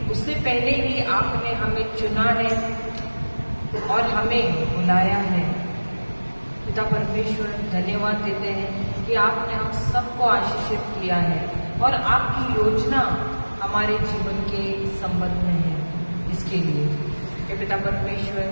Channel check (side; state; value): both; inverted; correlation -1.00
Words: उससे पहले ही आपने हमें चुना है और हमें बुलाया है। पिता परमेश्वर, धन्यवाद देते हैं कि आपने हम सबको आशीषित किया है और आपकी योजना हमारे जीवन के संबंध में है। इसके लिए हे पिता परमेश्वर,